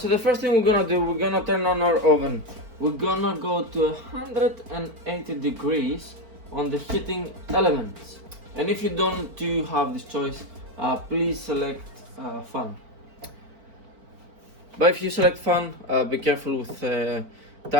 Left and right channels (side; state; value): left; late; 4.4 ms